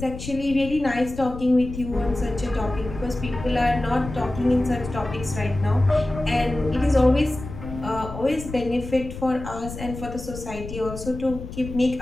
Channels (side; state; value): left; noise; rumble, 10 dB below the sound